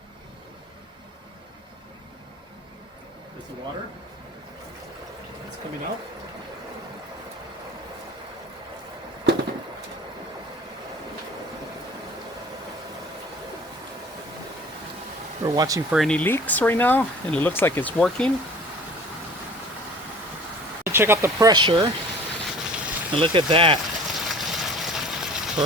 There's the water. It's coming out. We're watching for any leaks right now, and it looks like it's working. Check out the pressure, and look at that.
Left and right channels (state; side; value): normal; both; correlation 0.46